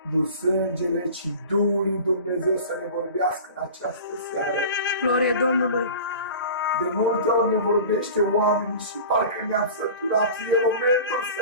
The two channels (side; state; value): both; inverted; correlation -0.38